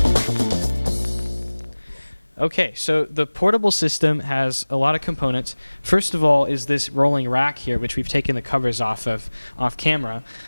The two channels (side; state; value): both; inverted; correlation -1.00